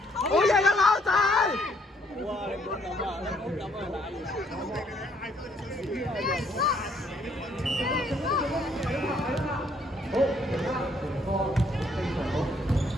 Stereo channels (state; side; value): normal; both; correlation 0.67